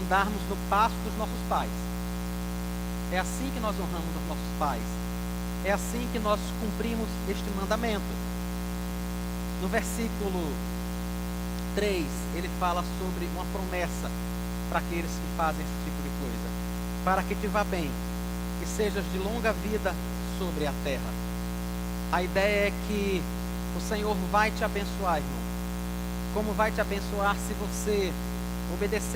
no passo dos nossos pais. É assim que nós honramos os nossos pais. É assim que nós cumprimos este mandamento. No versículo 3, ele fala sobre uma promessa para aqueles que fazem esse tipo de coisa. Para que te vá bem, que sejas de longa vida sobre a terra. A ideia é que o Senhor vai te abençoar, irmão. Como vai te abençoar se você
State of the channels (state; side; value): identical; both; correlation 1.00